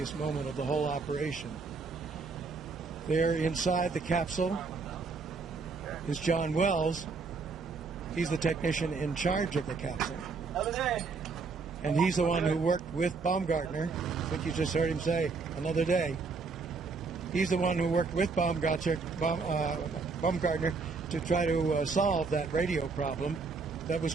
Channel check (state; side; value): quieter; left; 4.5 dB